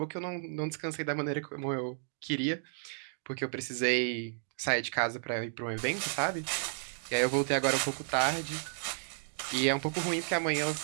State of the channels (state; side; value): silent; left; digital silence